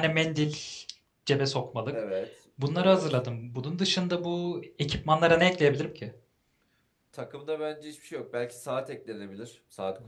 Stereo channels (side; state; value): both; identical; correlation 1.00